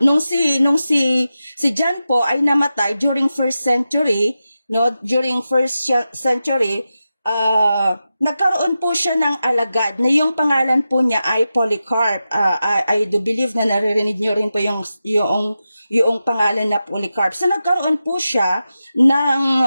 nung si John po ay namatay during first century, no, nagkaroon po siya ng alagad na yung pangalan po niya ay Polycarp. I do believe na naririnig niyo rin po yung pangalan na Polycarp. So nagkaroon po siya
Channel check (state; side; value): inverted; both; correlation -0.91